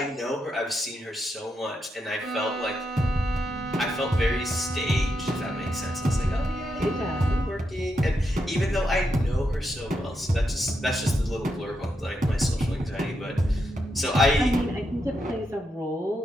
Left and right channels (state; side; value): normal; both; correlation 0.83